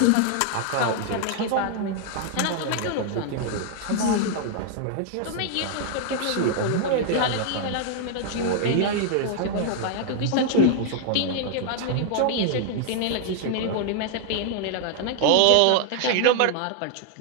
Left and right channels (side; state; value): both; different; correlation 0.00